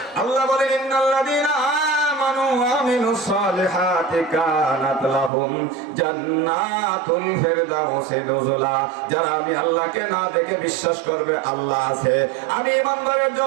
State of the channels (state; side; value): drops out; left; at 5.3 s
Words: আল্লাহ বলেন ইন্নাল্লাযীনা আমানু ওয়া আমিলুস সালিহাতি কানাত লাহুম জান্নাতুল ফিরদাউসি নুজুলা। যারা আমি আল্লাহকে না দেখে বিশ্বাস করবে আল্লাহ আছে, আমি ঈমানদারের